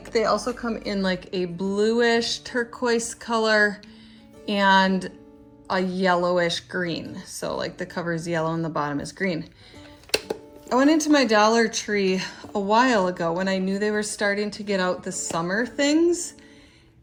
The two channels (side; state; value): both; identical; correlation 1.00